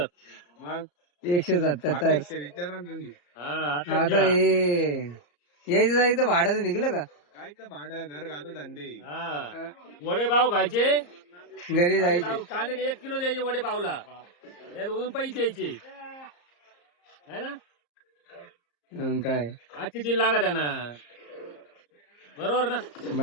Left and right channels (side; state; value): right; late; 34 ms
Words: मग 177. आता हे यायचं जायचं भाडं निघलं का? काय तर भाडं घर घालून धंदे वडे पाव खायचे घरी जायचं? कांदे 1 किलो द्यायचे वडे पावला त्यावरून पैसे द्यायचे है ना काय आजची दिन लागत आहे ना बरोबर ना